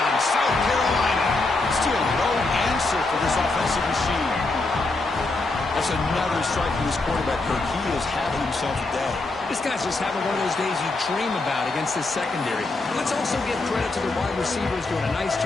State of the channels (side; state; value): right; quieter; 3.3 dB